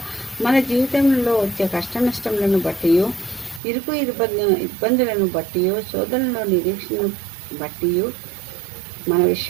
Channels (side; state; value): left; drops out; at 3.6 s